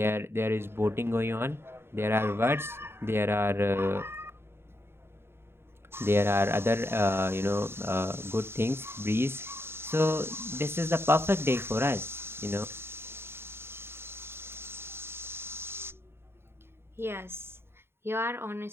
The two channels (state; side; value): late; left; 0.11 ms